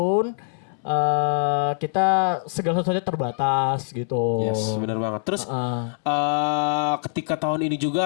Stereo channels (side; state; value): right; silent; 63 dB below the other